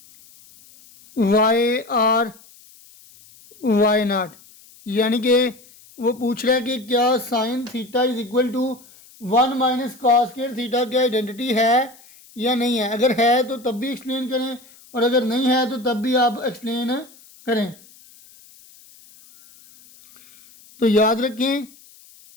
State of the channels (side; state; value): left; noise; hiss, 25 dB below the sound